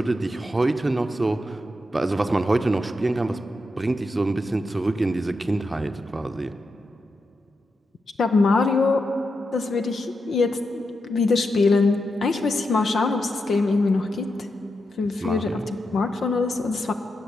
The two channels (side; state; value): both; normal; correlation 0.86